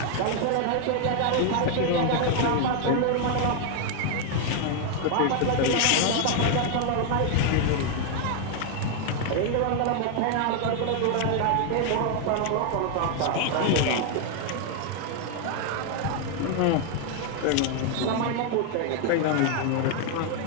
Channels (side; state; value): both; different; correlation 0.00